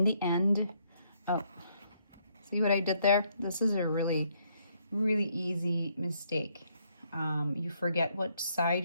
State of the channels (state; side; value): inverted; both; correlation -0.72